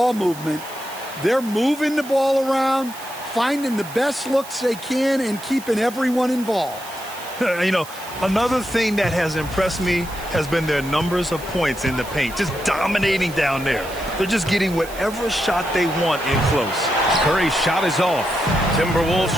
movement. They're moving the ball around, finding the best looks they can, and keeping everyone involved. You know, another thing that has impressed me has been their numbers of points in the paint, just dominating down there. They're just getting whatever shot they want in close. Curry's shot is off. Timberwolves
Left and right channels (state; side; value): noise; right; hiss, 16 dB below the sound